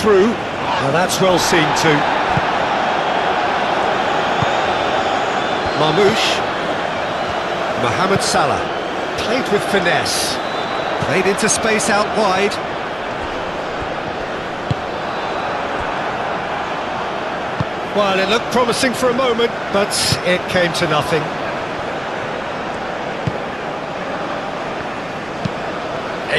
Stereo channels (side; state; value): right; noise; rumble, 24 dB below the sound